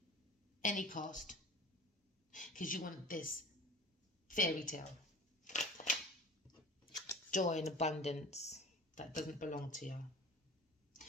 because you want this fairy tale, joy and abundance that doesn't belong to you.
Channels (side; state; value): both; normal; correlation 0.40